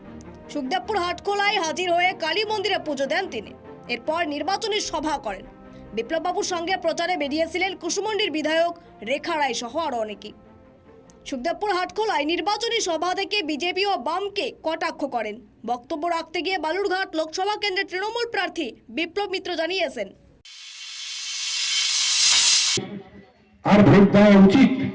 সুখদেবপুর হাটখোলায় হাজির হয়ে কালী মন্দিরে পুজো দেন তিনি। এরপর নির্বাচনী সভা করেন। বিপ্লববাবুর সঙ্গে প্রচারে বেরিয়েছিলেন কুসুমন্ডির বিধায়ক রেখা রায় সহ আরও অনেকেই। সুখদেবপুর হাটখোলায় নির্বাচনী সভা থেকে বিজেপি ও বামকে কটাক্ষ করেন। বক্তব্য রাখতে গিয়ে বালুরঘাট লোকসভা কেন্দ্রের তৃণমূল প্রার্থী বিপ্লব মিত্র জানিয়েছেন, আর ভোট দেওয়া উচিত।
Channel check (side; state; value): both; identical; correlation 1.00